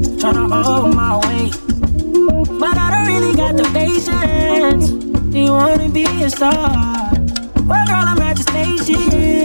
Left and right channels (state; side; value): inverted; both; correlation -1.00